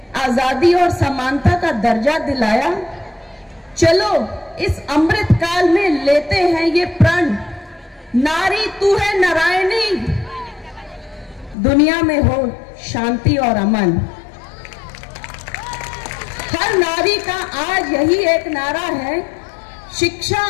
आजादी और समानता का दर्जा दिलाया? चलो इस अमृत काल में लेते हैं ये प्रण, नारी तू है नारायणी, दुनिया में हो शांति और अमन। हर नारी का आज यही एक नारा है, शिक्षा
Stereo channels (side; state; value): right; drops out; at 11.6 s